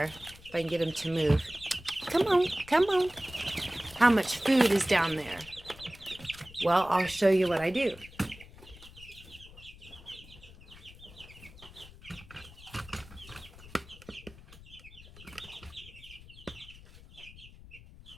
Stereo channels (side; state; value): left; noise; rumble, 19 dB below the sound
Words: If I can get them to move. Come on, come on. How much food is down there? Well, I'll show you what I do.